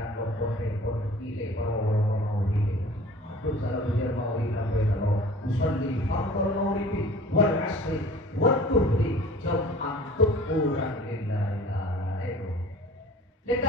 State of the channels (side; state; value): both; normal; correlation 0.45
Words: pokok kile para hile aduh salah bejar mau apa kalau usalli fardhu maghribi wal asri wal dhuhri jam'an tuquran lillahi ta'ala dan